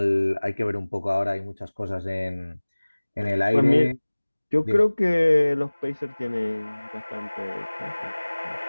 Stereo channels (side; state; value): both; inverted; correlation -1.00